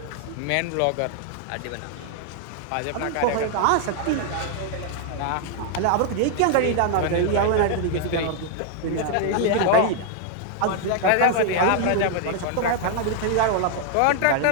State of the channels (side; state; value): both; different; correlation 0.00